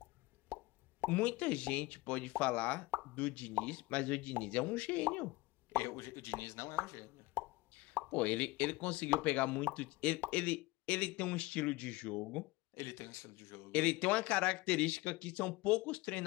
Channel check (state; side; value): quieter; right; 21.0 dB